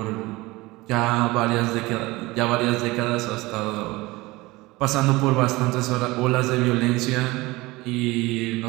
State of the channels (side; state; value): left; quieter; 21.2 dB